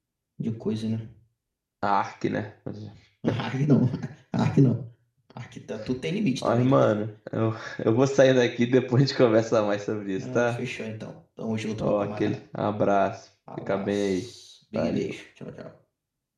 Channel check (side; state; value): both; identical; correlation 1.00